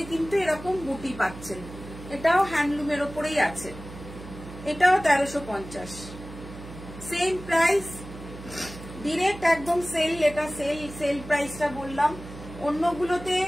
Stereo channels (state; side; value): noise; right; hum, 14 dB below the sound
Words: কিন্তু এরকম বুটি পাচ্ছেন। এটাও হ্যান্ডলুমের ওপরেই আছে, এটাও 1350, সেম প্রাইস, ডিরেক্ট একদম সেল, এটা সেল প্রাইসটা বললাম, অন্যগুলোতে